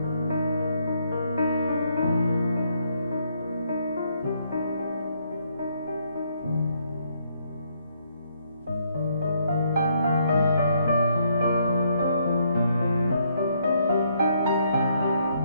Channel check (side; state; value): both; inverted; correlation -0.71